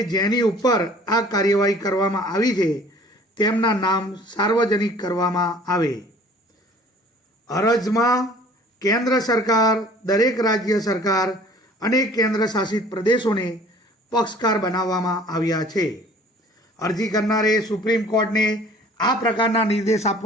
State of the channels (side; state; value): both; normal; correlation 0.51